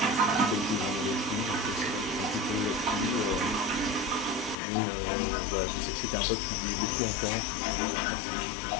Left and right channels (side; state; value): right; drops out; at 4.5 s